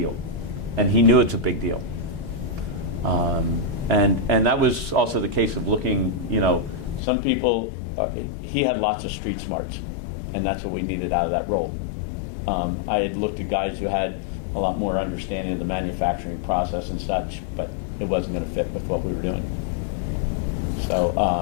And he knew it's a big deal. And that was also the case of looking, some people, he had lots of street smarts, and that's what we needed out of that role. I had looked at guys who had a lot more understanding of the manufacturing process and such, but it wasn't going to fit with what we were doing. So,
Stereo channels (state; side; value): drops out; right; at 7.0 s